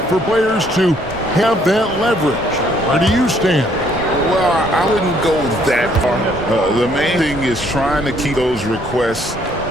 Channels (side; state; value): both; normal; correlation 0.65